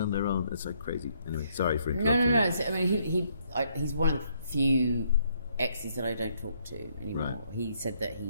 their own. It's like crazy. Anyway, sorry for interrupting. No. I mean, he's one of the few exes that I don't talk to anymore. Right. He said that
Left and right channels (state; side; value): inverted; both; correlation -0.70